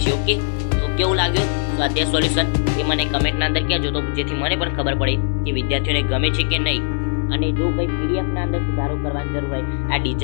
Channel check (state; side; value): silent; right; digital silence